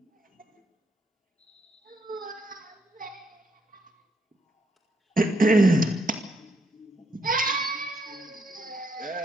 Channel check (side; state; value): both; normal; correlation 0.75